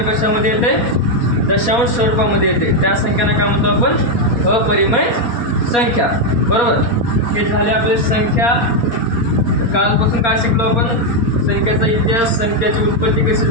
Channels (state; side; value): late; right; 4.2 ms